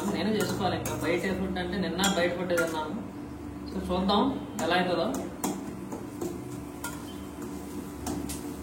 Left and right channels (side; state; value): both; identical; correlation 1.00